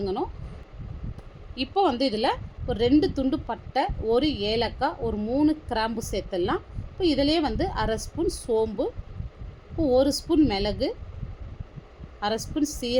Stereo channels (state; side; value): identical; both; correlation 1.00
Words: இப்போ வந்து இதில் ஒரு 2 துண்டு பட்டை, 1 ஏலக்காய், ஒரு 3 கிராம்பு சேர்த்துடலாம். இப்போ இதிலே வந்து அரை ஸ்பூன் சோம்பு, இப்போ 1 ஸ்பூன் மிளகு, அரை ஸ்பூன்